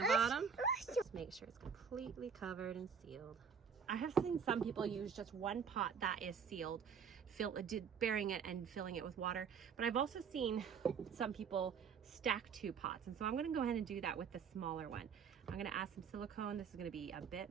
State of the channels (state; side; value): quieter; left; 6.8 dB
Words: bottom. Just make sure it's completely covered and sealed. I have seen some people use just one pot that is sealed, burying it and filling it with water. But I've also seen some people stack 2 pots. And so I'm gonna go ahead and do that with the smaller one. I'm gonna add some silicone. This is gonna be a bit